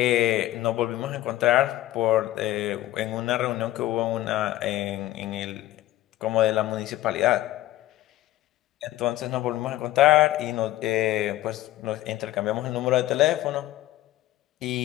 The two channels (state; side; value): quieter; right; 15.4 dB